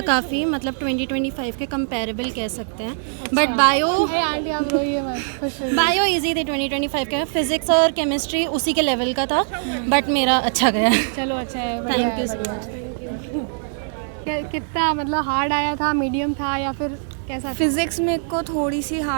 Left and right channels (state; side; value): silent; left; digital silence